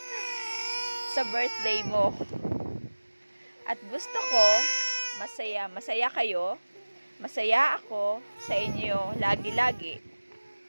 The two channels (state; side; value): inverted; both; correlation -1.00